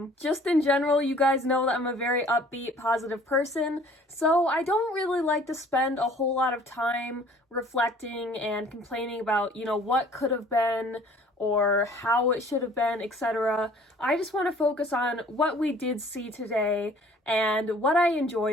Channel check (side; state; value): both; normal; correlation 0.53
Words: Just in general, you guys know that I'm a very upbeat, positive person, so I don't really like to spend a whole lot of time reflecting and complaining about, what could have been, or how it should have been, etc. I just want to focus on what we did see today and what I